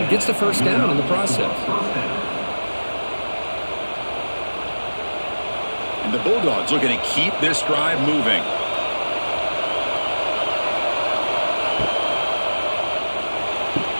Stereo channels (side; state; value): both; inverted; correlation -1.00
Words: gets the first down in the process. And the Bulldogs looking to keep this drive moving.